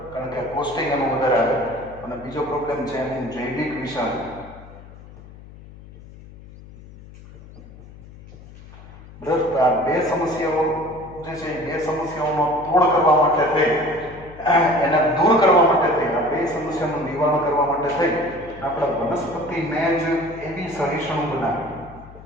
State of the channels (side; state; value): left; noise; hum, 19 dB below the sound